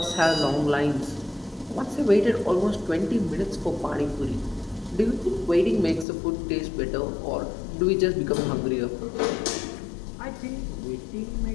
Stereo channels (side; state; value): right; drops out; at 6.1 s